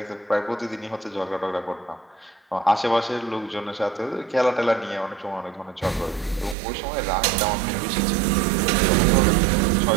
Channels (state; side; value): drops out; left; at 6.6 s